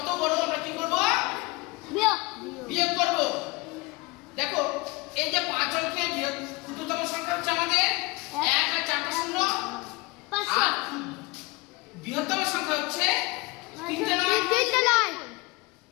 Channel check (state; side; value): quieter; right; 24.4 dB